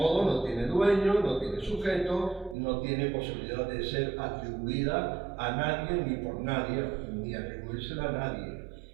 no tiene dueño, no tiene sujeto, no tiene posibilidad de ser atribuida a nadie ni por nadie, ni atribuírsela a nadie.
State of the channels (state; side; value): drops out; left; at 2.6 s